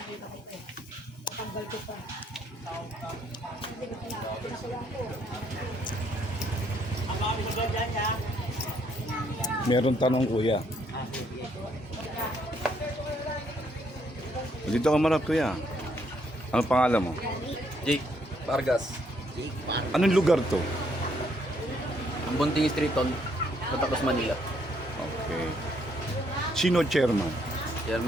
ko ito. Tanggal ko pa. Hindi ko pinakulang ko. Ang mga bisagal dyan niya. Meron tanong kuya. Dito ka marap kuya. Ano pangalan mo? Jake Vargas. Anong lugar to? Ang Bunting Street on Patacos, Manila. Okay. Sino chairman?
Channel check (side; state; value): both; normal; correlation 0.71